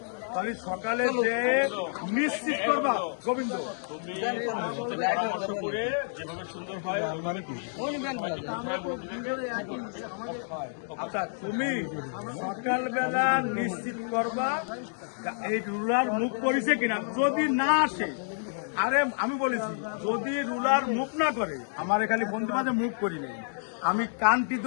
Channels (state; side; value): silent; right; digital silence